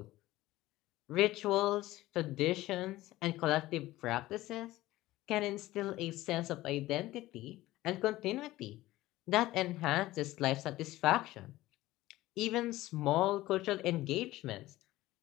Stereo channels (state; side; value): quieter; right; 16.9 dB